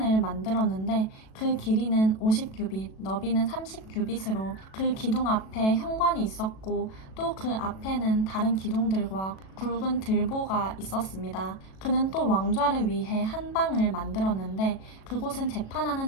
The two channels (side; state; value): right; late; 37 ms